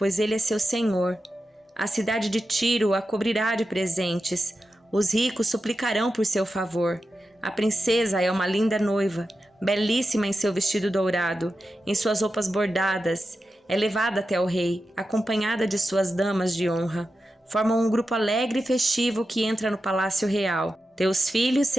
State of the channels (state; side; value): normal; both; correlation 0.90